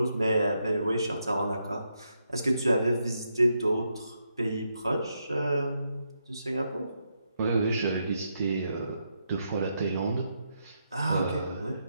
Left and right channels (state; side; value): inverted; both; correlation -0.81